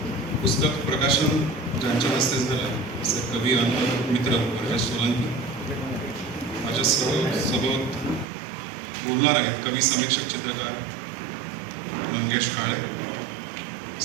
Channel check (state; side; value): drops out; left; at 8.2 s